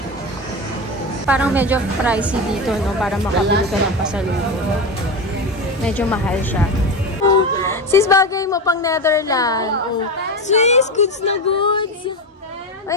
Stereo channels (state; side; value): normal; both; correlation 0.20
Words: Parang medyo pricey dito, no? Para makabili ka ng pasalubong. Medyo mahal siya. Oh, sis, bagay mo pang Netherlands. Oh. Sis, goods na goods. Ay,